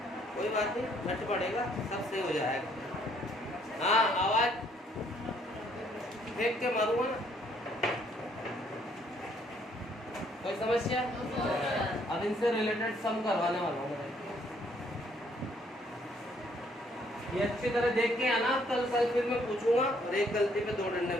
कोई बात नहीं, घट पड़ेगा सब सही हो जाएगा। हाँ आवाज फेंक के मारूंगा ना, कोई समस्या? अब इनसे रिलेटेड सम करवाने वाला हूँ। ये अच्छी तरह देख के आना, कल फिर मैं पूछूंगा और एक गलती पे 2 डंडे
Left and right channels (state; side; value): normal; both; correlation 0.67